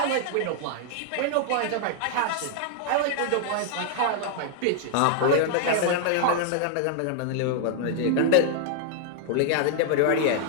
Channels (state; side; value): different; both; correlation -0.01